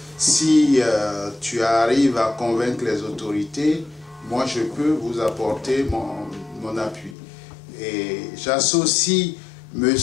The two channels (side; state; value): right; drops out; at 7.2 s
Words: Si tu arrives à convaincre les autorités, moi je peux vous apporter mon appui. » Et j'associe